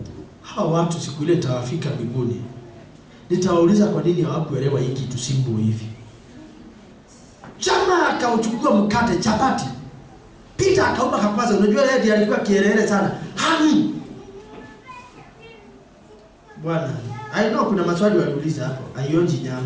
Hawa watu siku ile tawafika mbinguni, nitawauliza kwa nini hawakuelewa hiki kitu simbo hivi. Jamaa akauchukua mkate chapati, Peter akaomba kakwaza. Unajua yeye ndiye alikuwa kielele sana. Bwana, I know kuna maswali waliuliza hapo. Aionji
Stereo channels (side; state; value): both; identical; correlation 1.00